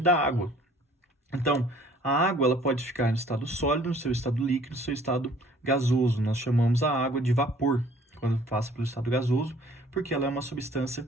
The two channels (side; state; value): both; normal; correlation 0.55